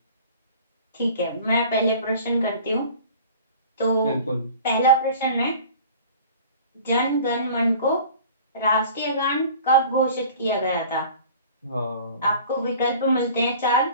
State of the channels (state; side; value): inverted; both; correlation -0.44